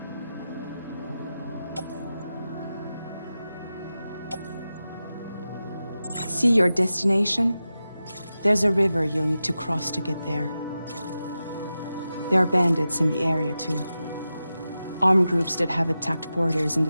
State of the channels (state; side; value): inverted; both; correlation -0.92